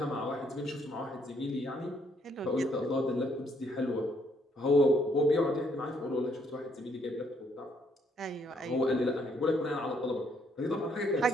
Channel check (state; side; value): normal; both; correlation 0.69